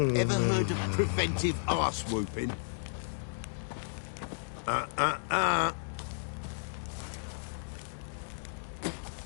heard of preventive arse whooping?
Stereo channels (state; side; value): silent; right; digital silence